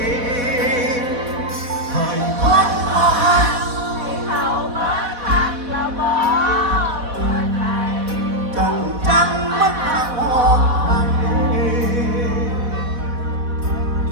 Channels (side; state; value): left; late; 4.1 ms